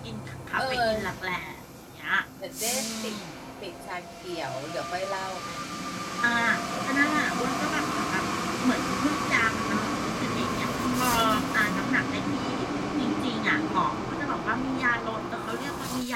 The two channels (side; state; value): both; identical; correlation 1.00